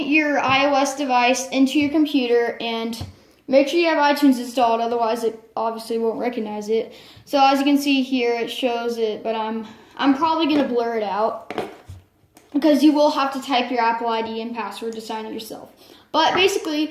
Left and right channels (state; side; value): identical; both; correlation 1.00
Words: your iOS device into your computer and make sure you have iTunes installed, otherwise it obviously won't recognize it. So as you can see here, it shows it, but I'm probably going to blur it out, because you will have to type your Apple ID and password to sign it yourself. But